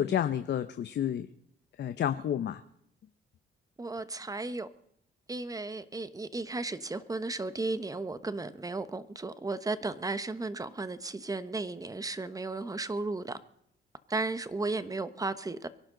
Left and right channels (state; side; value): normal; both; correlation 0.48